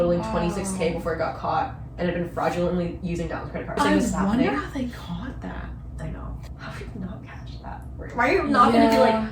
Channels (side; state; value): both; identical; correlation 1.00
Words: $26K before he got caught, and had been fraudulently using Dallin's credit card. I wonder how they caught that. I know. How did you not catch that? Why are you not gonna be like,